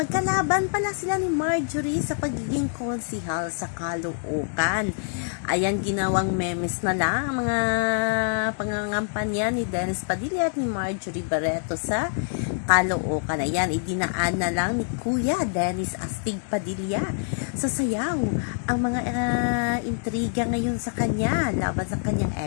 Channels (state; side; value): silent; right; digital silence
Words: pala sila ni Marjorie sa pagiging konsihal sa Caloocan. Ayan, ginawang memes na lang ang mga pangangampanya ni Dennis Padilla at ni Marjorie Barreto sa Caloocan. Ayan, idinaan na lang ni Kuya Dennis Astig Padilla sa sayaw ang mga intriga ngayon sa kanya laban sa kanyang